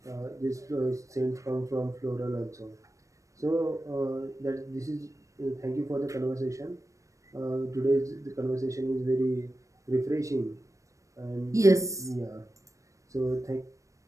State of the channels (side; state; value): left; late; 0.15 ms